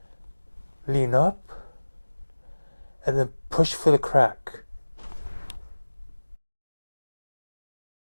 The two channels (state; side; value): inverted; both; correlation -1.00